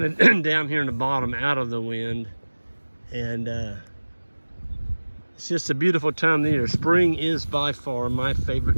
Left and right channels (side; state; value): both; inverted; correlation -1.00